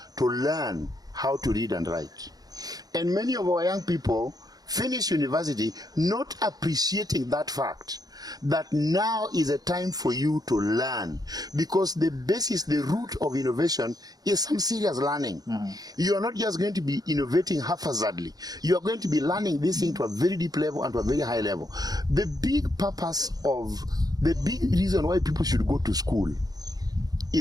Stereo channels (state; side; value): late; left; 0.19 ms